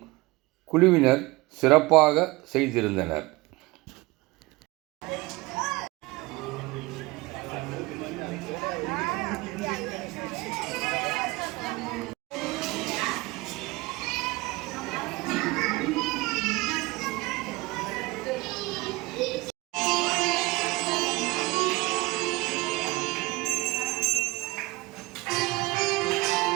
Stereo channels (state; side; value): quieter; left; 22.2 dB